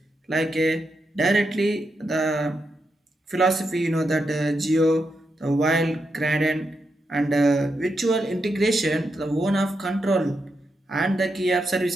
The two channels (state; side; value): normal; both; correlation 0.84